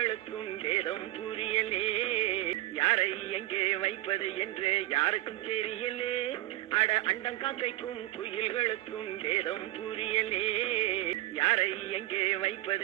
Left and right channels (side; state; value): left; quieter; 16.7 dB